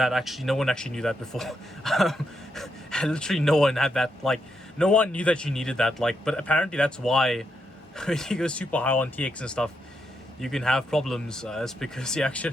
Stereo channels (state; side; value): normal; both; correlation 0.81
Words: Actually, no one actually knew that before. Literally no one had that. Like, no one knew that you needed that. Like, but apparently that's why when you go super high on TX and stuff, you can have problems. It's because you actually